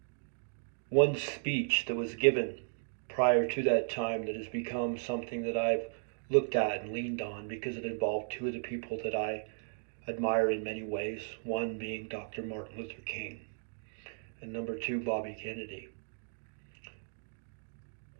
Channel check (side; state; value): left; silent; digital silence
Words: One speech that was given prior to that time that has become something that I've looked at and leaned on because it involved two of the people that I admire in many ways, one being Dr. Martin Luther King, and number two, Bobby Kennedy.